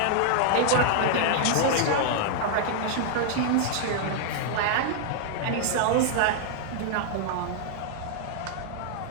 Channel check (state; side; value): different; both; correlation -0.01